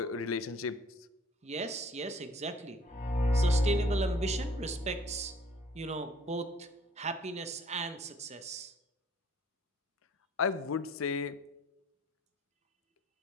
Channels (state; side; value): normal; both; correlation 0.56